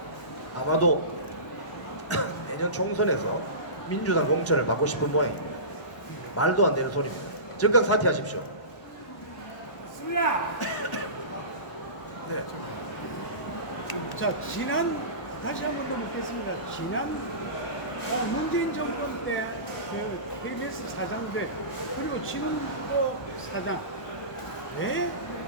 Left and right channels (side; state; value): right; late; 1.0 ms